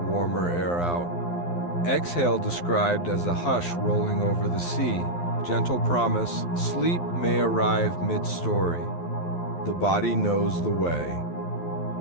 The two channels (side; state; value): right; late; 12 ms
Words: warmer air out. Exhale described as a hush rolling over the sea. Gentle promise, sleep may arrive mid-story. The body knows the way.